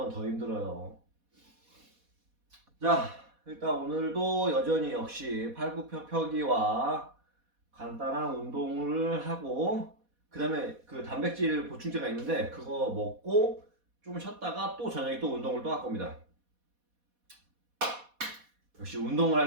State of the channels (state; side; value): late; left; 4.1 ms